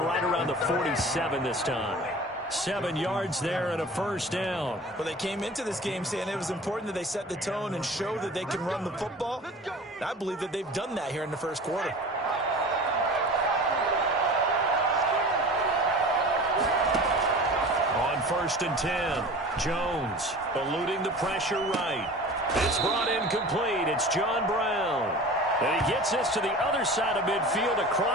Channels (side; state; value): both; normal; correlation 0.39